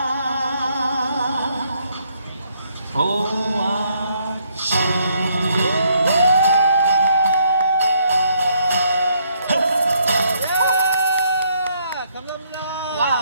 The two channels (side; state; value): both; inverted; correlation -0.71